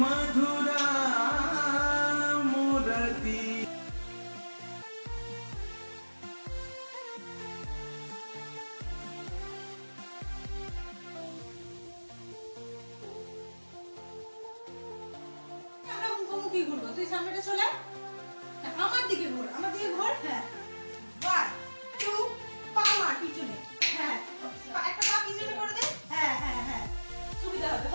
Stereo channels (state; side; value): inverted; both; correlation -1.00